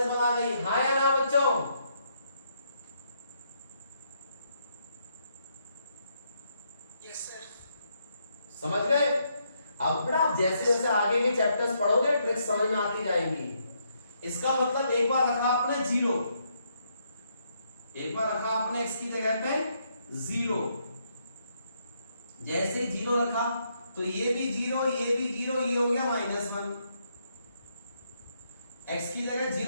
आ गई। हाँ या ना बच्चों? Yes sir. समझ गए? अब बेटा जैसे जैसे आगे के चैप्टर्स पढ़ोगे ट्रिक्स समझ में आती जाएंगी। इसका मतलब एक बार रखा आपने 0, एक बार रखा आपने x की जगह पे 0, जैसे 0 रखा तो ये भी 0, ये भी 0, ये हो गया -1। x की जगह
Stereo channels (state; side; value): inverted; both; correlation -0.76